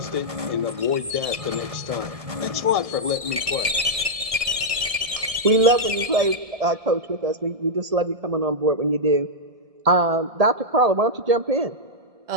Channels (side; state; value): left; late; 1.7 ms